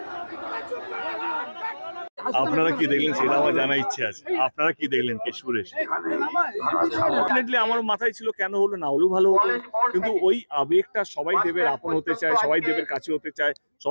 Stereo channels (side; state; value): both; inverted; correlation -1.00